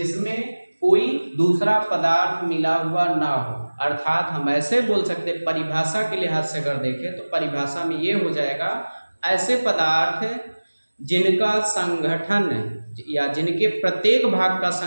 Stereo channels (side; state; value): both; inverted; correlation -1.00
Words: कोई दूसरा पदार्थ मिला हुआ ना हो। अर्थात हम ऐसे बोल सकते, परिभाषा के लिहाज से अगर देखें तो परिभाषा में ये हो जाएगा, ऐसे पदार्थ जिनका संगठन या जिनके प्रत्येक भाग का